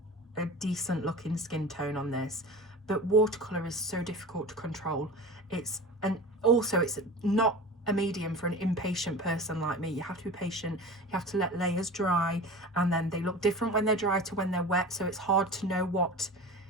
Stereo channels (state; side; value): normal; both; correlation 0.34